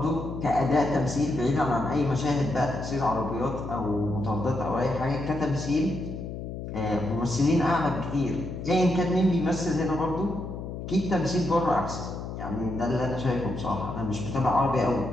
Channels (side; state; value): left; noise; hum, 7 dB below the sound